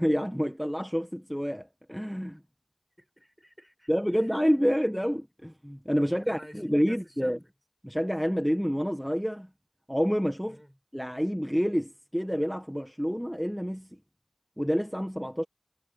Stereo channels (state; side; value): identical; both; correlation 1.00